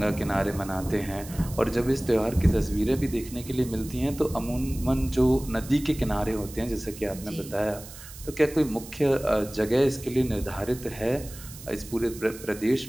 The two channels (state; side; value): noise; right; hiss, 16 dB below the sound